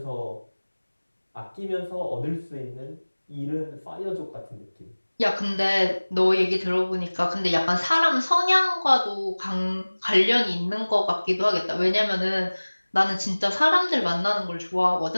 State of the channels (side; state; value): both; inverted; correlation -1.00